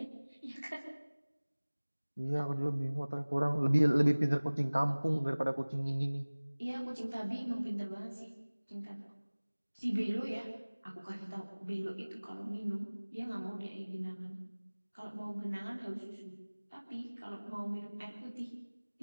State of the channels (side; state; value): both; inverted; correlation -1.00